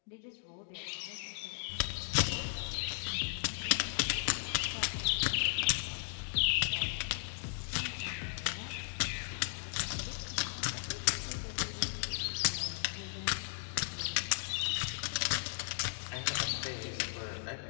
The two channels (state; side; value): silent; right; digital silence